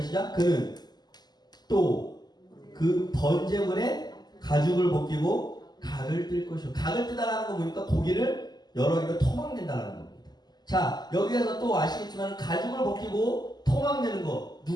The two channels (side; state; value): right; late; 0.20 ms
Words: 시작. 그는 또 그 번제물에 가죽을 벗기고 각을 뜰 것이요. 각을 뜨다라는 거 보니까 고기를 여러 개를 토막낸다라는 겁니다. 자, 여기에서 또 아시겠지만 가죽을 벗기고 토막내는 거